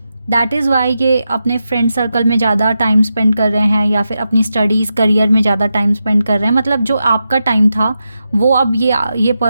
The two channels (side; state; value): both; inverted; correlation -0.88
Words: दैट इज़ वाई ये अपने फ्रेंड सर्कल में ज़्यादा टाइम स्पेंड कर रहे हैं या फिर अपनी स्टडीज़ करियर में ज़्यादा टाइम स्पेंड कर रहे हैं। मतलब जो आपका टाइम था वो अब ये